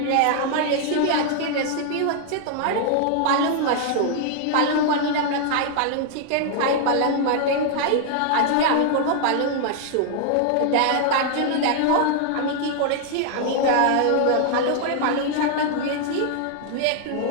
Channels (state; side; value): different; both; correlation 0.00